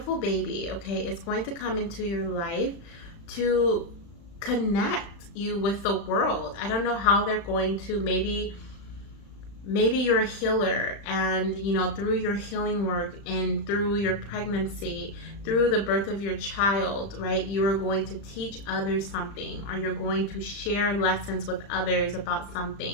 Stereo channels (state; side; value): late; right; 35 ms